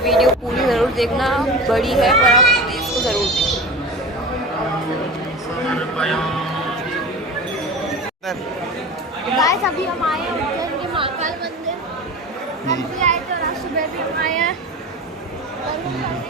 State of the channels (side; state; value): both; normal; correlation 0.32